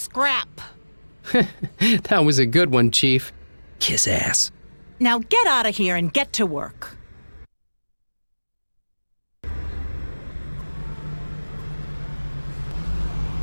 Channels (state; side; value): inverted; both; correlation -1.00